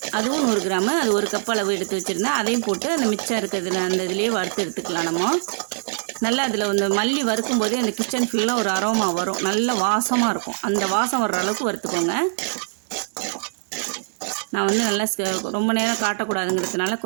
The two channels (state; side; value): silent; left; digital silence